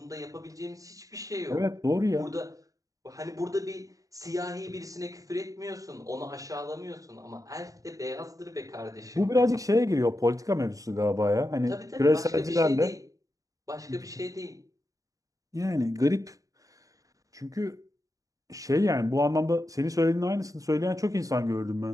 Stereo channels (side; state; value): left; late; 0.16 ms